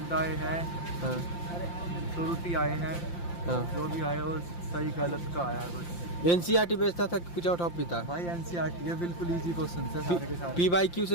आए हैं। हाँ। त्रुटि आए हैं। हाँ। जो भी आया वो सही गलत का आया है बस। NCERT बेचता था कि कुछ और टॉपिक था? भाई NCERT ये बिल्कुल इजी क्वेश्चन है सारे के सारे। PYQ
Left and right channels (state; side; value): late; right; 5.8 ms